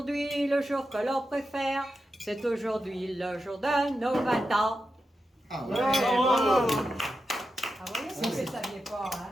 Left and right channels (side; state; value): both; normal; correlation 0.89